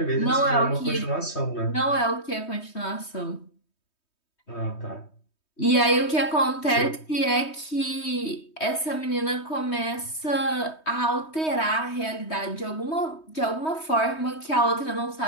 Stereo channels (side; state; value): right; late; 3.2 ms